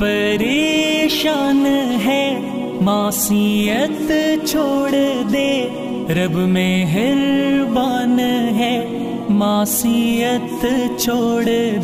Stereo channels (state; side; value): identical; both; correlation 1.00